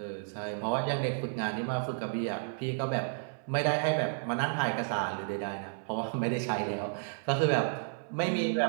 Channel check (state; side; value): silent; left; 56 dB below the other